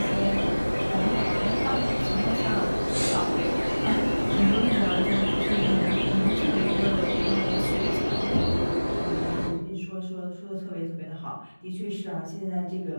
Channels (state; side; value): inverted; both; correlation -1.00